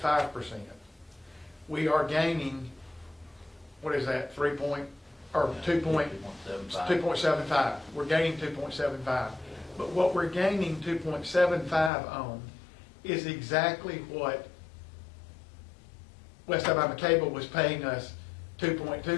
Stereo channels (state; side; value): drops out; right; at 11.9 s